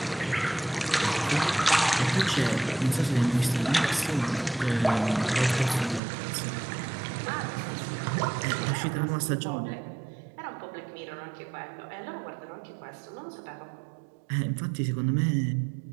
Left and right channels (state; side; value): drops out; left; at 6.0 s